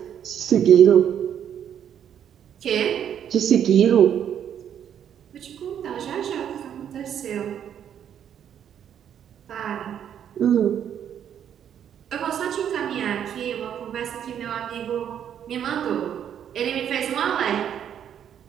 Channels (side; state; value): left; quieter; 9.2 dB